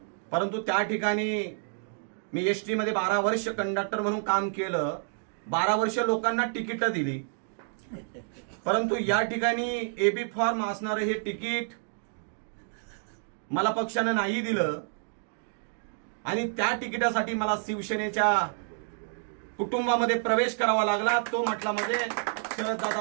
परंतु त्या ठिकाणी मी एसटी मध्ये 12 वर्ष कंडक्टर म्हणून काम केलं. 12 वर्ष लोकांना तिकीट दिली, परंतु या ठिकाणी एबी फॉर्म असणारं हे तिकीट मला पक्षानं नाही दिलं आणि त्या तिकिटासाठी मला शिवसेनेच्या कुटुंबामध्ये प्रवेश करावा लागला. तो म्हटला मध्ये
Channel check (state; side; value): silent; left; digital silence